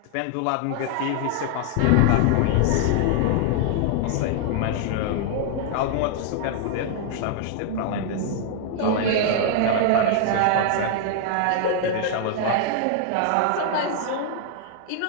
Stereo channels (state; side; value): different; both; correlation 0.00